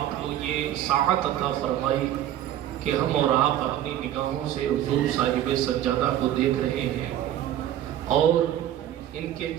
کو یہ ساعت عطا فرمائی کہ ہم اور آپ اپنی نگاہوں سے حضور صاحب سجادہ کو دیکھ رہے ہیں اور ان کے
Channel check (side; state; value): left; quieter; 12.0 dB